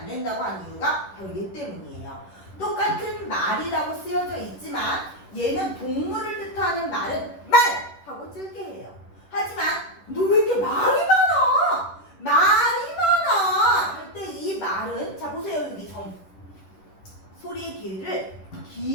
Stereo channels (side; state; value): right; late; 10 ms